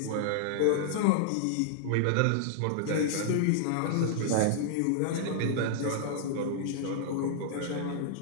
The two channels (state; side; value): different; both; correlation -0.01